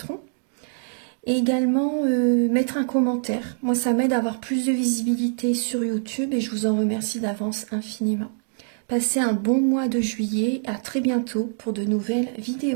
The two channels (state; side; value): silent; left; digital silence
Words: Et également mettre un commentaire. Moi, ça m'aide à avoir plus de visibilité sur YouTube et je vous en remercie d'avance infiniment. Passez un bon mois de juillet. À très bientôt pour de nouvelles